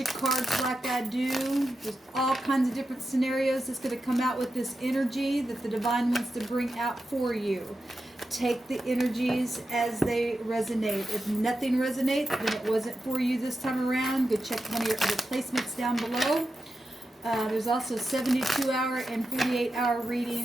cards like I do. There's all kinds of different scenarios that's going to come out with this energy that the divine wants to bring out for you. Take the energies as they resonate. If nothing resonates, then it wasn't for you this time around. Go check one of your other placements down below. There's also 72-hour and 48-hour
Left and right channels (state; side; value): normal; both; correlation 0.90